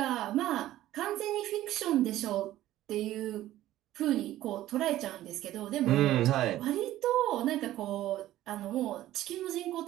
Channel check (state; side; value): quieter; left; 14.3 dB